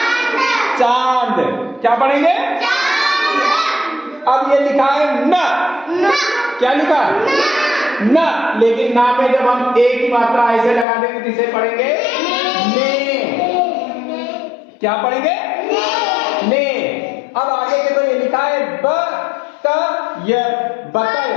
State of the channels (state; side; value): drops out; right; at 10.9 s